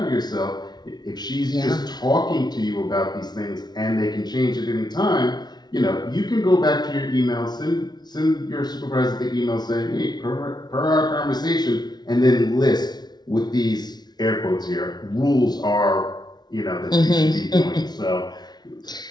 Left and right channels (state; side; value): late; right; 0.20 ms